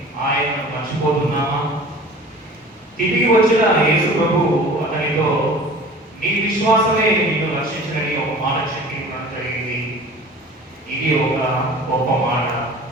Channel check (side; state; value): both; normal; correlation 0.43